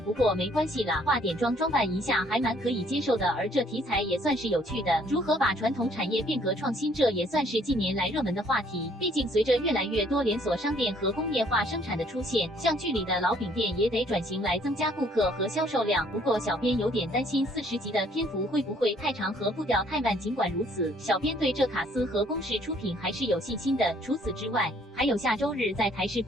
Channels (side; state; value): both; normal; correlation 0.62